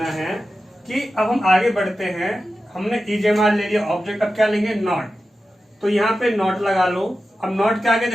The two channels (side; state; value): both; normal; correlation 0.92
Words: है कि अब हम आगे बढ़ते हैं। हमने इजेमार ले लिया ऑब्जेक्ट, अब क्या लेंगे, नॉट। तो यहाँ पे नॉट लगा लो। अब नॉट के आगे